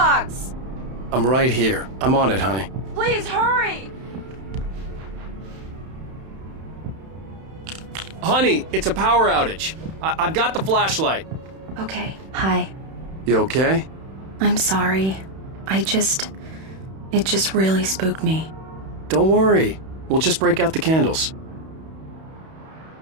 I'm right here. I'm on it, honey. Please hurry. Honey, it's a power outage. I've got the flashlight. Okay, hi. You okay? I'm sorry. It just really spooked me. Don't worry. We'll just break out the candles.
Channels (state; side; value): late; left; 31 ms